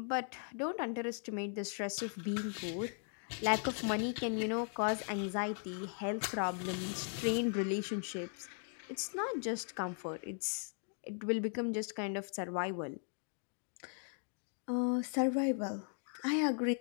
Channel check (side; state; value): right; silent; 52 dB below the other